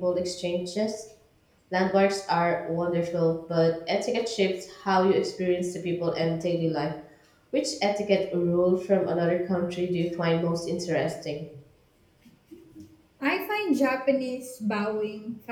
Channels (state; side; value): identical; both; correlation 1.00